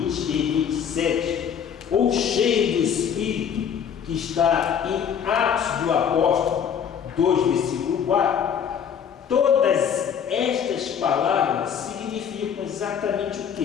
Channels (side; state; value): right; quieter; 7.9 dB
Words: e 27, ou cheio do Espírito, que está em Atos do Apóstolo 2, versículo 4, todas estas palavras significam exatamente o